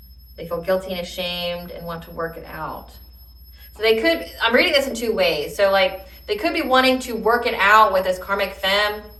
They feel guilty and ashamed and want to work it out. So I'm reading this in 2 ways. So like they could be wanting to work it out with this karmic femme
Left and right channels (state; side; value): identical; both; correlation 1.00